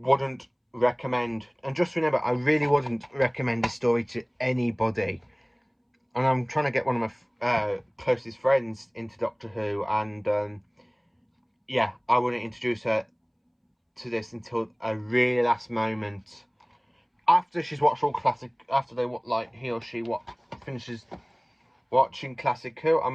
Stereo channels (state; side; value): identical; both; correlation 1.00